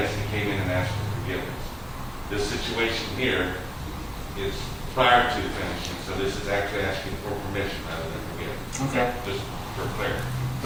he came in and asked for forgiveness. This situation here is prior to finishing, so this is actually asking for permission rather than forgiveness, Okay. just for clarity.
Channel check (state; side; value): identical; both; correlation 1.00